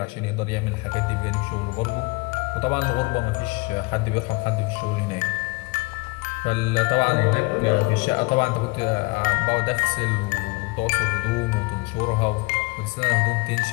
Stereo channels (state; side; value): quieter; right; 26.1 dB